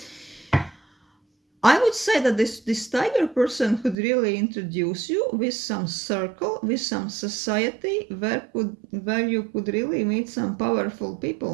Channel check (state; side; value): drops out; left; at 4.0 s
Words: I would say that this tiger person could really introduce you with some circle, with some society where you could really meet some powerful